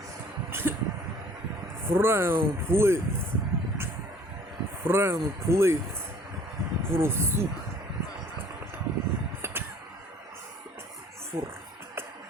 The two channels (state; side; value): normal; both; correlation 0.53